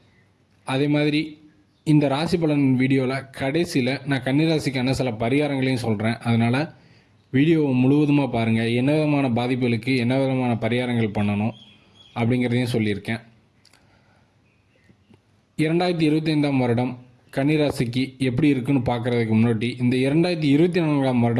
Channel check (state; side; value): identical; both; correlation 1.00